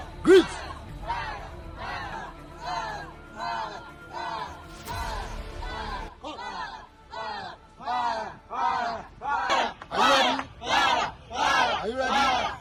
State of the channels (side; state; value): both; identical; correlation 1.00